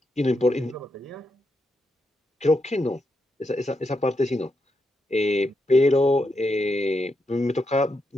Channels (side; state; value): both; normal; correlation 0.83